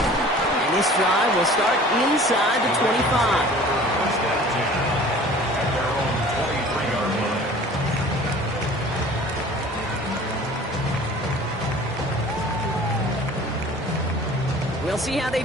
This drive will start inside the 25. First and 10 at their own 23-yard line. We'll see how they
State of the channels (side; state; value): both; normal; correlation 0.46